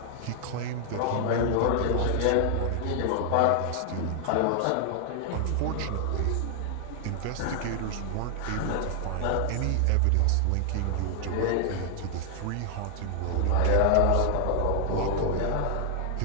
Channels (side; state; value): both; different; correlation 0.00